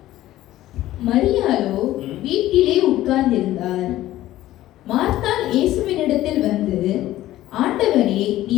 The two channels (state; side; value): quieter; right; 14.8 dB